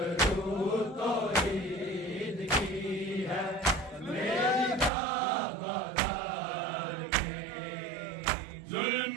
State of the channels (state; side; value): drops out; left; at 4.9 s